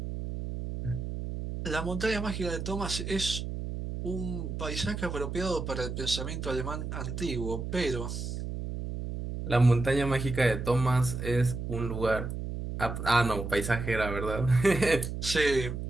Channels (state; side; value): noise; right; hum, 5 dB below the sound